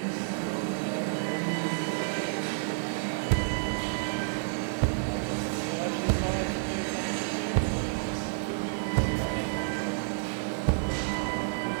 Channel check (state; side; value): silent; left; digital silence